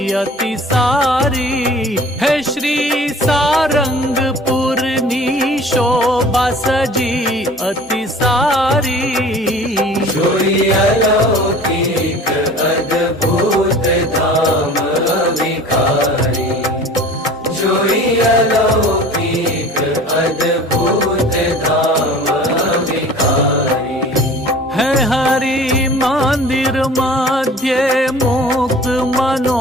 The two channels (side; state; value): both; normal; correlation 0.44